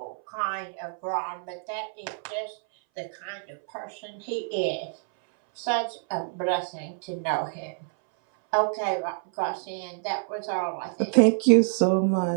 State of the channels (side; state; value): left; silent; 59 dB below the other